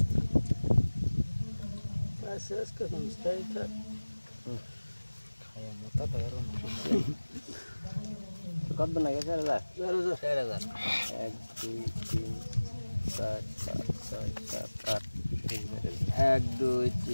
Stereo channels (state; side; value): inverted; both; correlation -1.00